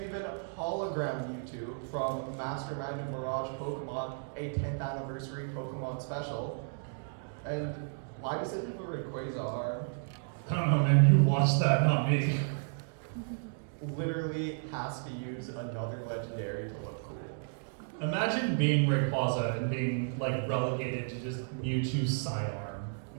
hologram Mewtwo from Mastermind and Mirage Pokemon, a 10th anniversary Pokemon special. And why does it have a Rayquaza arm? I don't know, man. You watched that, not me. Literally has to use another legendary to look cool. Imagine being Rayquaza and being like relegated to just Mewtwo's sidearm.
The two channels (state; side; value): silent; left; digital silence